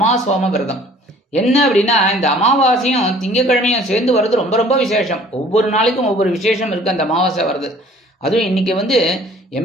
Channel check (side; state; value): both; normal; correlation 0.53